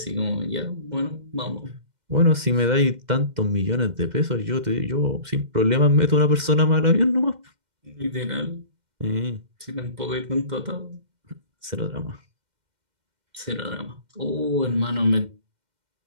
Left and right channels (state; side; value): late; left; 2.1 ms